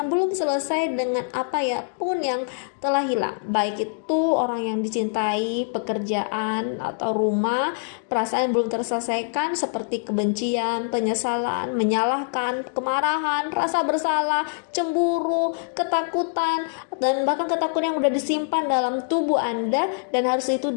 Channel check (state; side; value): silent; right; digital silence